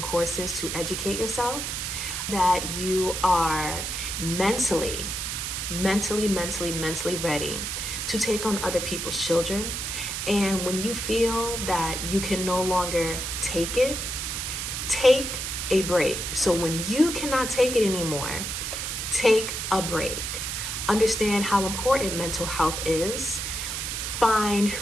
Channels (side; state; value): right; noise; hiss, 3 dB below the sound